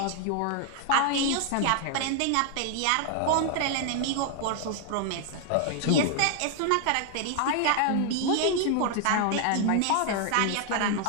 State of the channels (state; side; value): different; both; correlation 0.00